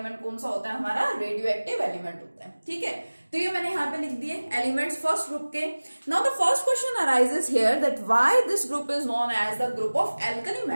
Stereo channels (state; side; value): inverted; both; correlation -1.00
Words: कौन सा होता है, हमारा रेडियो एक्टिव एलिमेंट होता है। ठीक है, तो ये मैंने यहाँ पे लिख दिए एलिमेंट्स फर्स्ट ग्रुप के। Now the first question arises here that why this group is known as the group of alkali